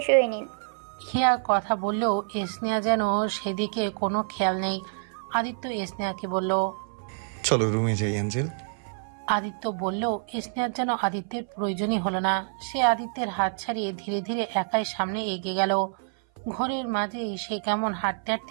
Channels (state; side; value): silent; left; 57 dB below the other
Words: হয়ে নিন। হিয়া কথা বললেও স্নেহা যেন সেদিকে কোনো খেয়াল নেই। আদিত্য স্নেহাকে বলল, চলো রুমে যাই অ্যাঞ্জেল। আদিত্য বললেও স্নেহার যেন আদিত্যের প্রয়োজনই হলো না। সে আদিত্যের হাত ছাড়িয়ে ধীরে ধীরে একাই সামনে এগিয়ে গেল। ঘরের মাঝেই সে কেমন হাঁটতে